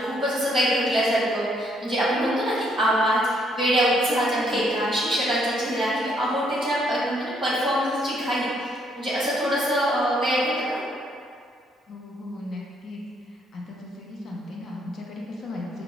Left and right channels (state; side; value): normal; both; correlation 0.70